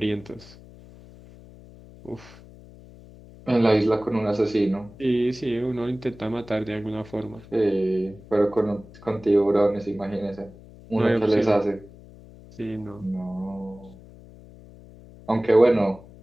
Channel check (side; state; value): left; noise; hum, 20 dB below the sound